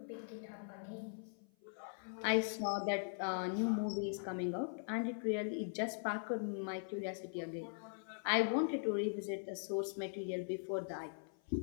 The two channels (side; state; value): right; silent; 50 dB below the other